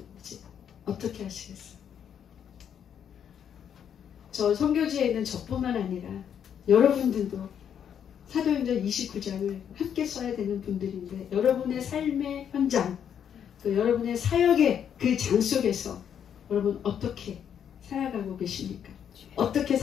어떻게 하시겠어요? 저 선교지에 있는 저뿐만 아니라 여러분들도 사도행전 29장을 함께 써야 되는 분들인데 여러분의 삶의 현장 또 여러분의 사역의 그 장 속에서 여러분 어떻게 살아가고 계십니까? 어떻게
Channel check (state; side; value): quieter; right; 8.6 dB